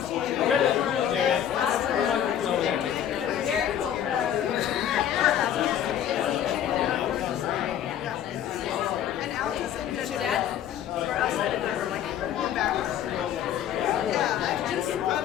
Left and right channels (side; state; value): right; quieter; 10.2 dB